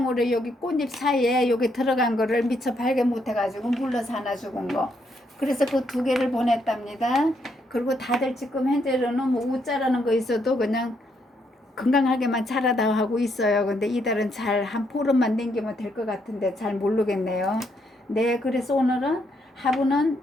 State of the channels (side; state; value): both; normal; correlation 0.75